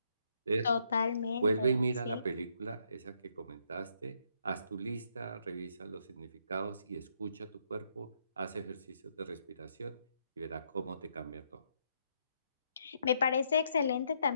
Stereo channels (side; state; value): both; inverted; correlation -0.74